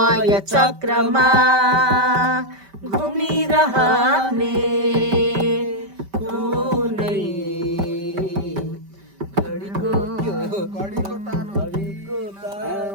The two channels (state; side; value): late; left; 5.1 ms